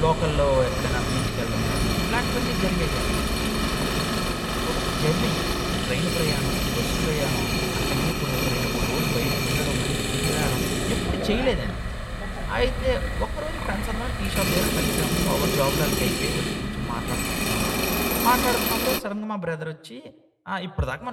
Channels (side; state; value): both; identical; correlation 1.00